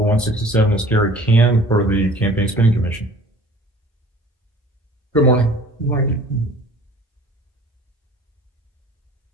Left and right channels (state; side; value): normal; both; correlation 0.48